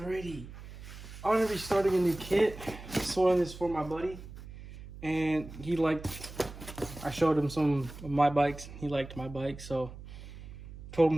I'm gonna be starting a new kit. Soiling this for my buddy, and he liked. I showed him some of my bikes. He liked my bike, so told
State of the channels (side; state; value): right; noise; hum, 14 dB below the sound